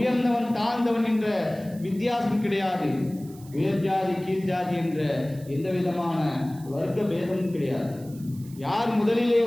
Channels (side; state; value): right; noise; hiss, 23 dB below the sound